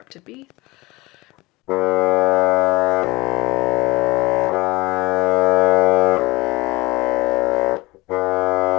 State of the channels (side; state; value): right; quieter; 21.8 dB